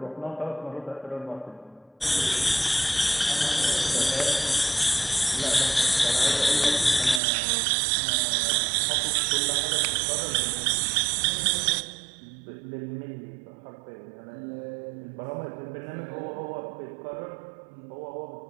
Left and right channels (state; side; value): drops out; left; at 7.2 s